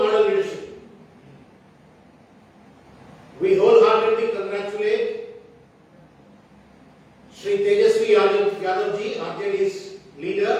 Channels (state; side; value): identical; both; correlation 1.00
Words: leadership. We wholeheartedly congratulate Shri Tejasvi Yadav ji, RJD's leader